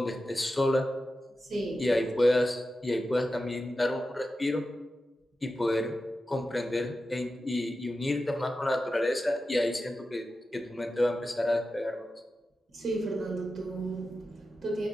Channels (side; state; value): both; normal; correlation 0.92